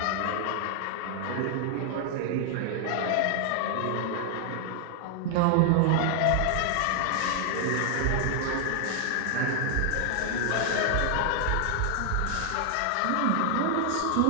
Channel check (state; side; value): different; both; correlation 0.00